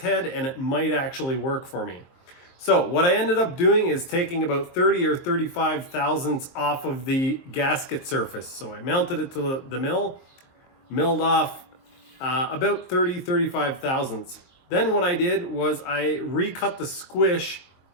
and it might actually work for me. So what I ended up doing is taking about 30 or 35 thousandths off of the gasket surface. So I mounted it to the mill, milled off about 35 thousandths. Then what I did was I recut the squish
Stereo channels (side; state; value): right; late; 23 ms